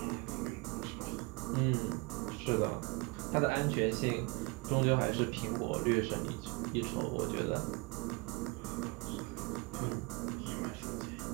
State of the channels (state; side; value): quieter; left; 27.1 dB